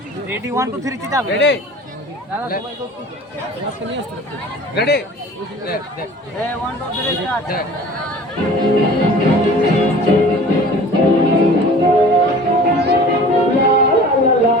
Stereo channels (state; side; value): normal; both; correlation 0.44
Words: রেডি 1 2 3 যাবে রেডি দাদা সবাই তো আজকে নিয়ে আসতে রেডি দেখ দেখ এ 1 2 3 স্টার্ট দেখ